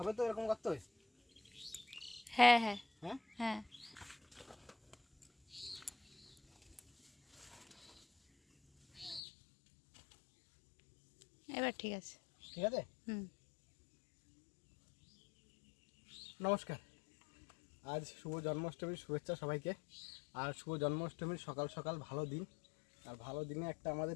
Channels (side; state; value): right; drops out; at 9.2 s